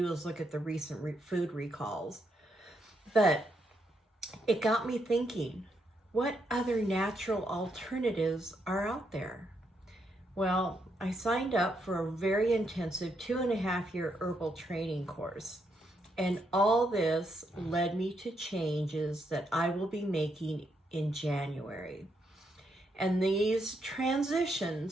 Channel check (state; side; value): normal; both; correlation 0.78